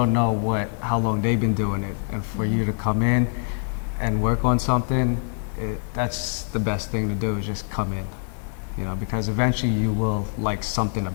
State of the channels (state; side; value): silent; right; digital silence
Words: know how long they've been doing it, and for you to come in and work on something, that's the best thing to do, is just come in. Because eventually you will like something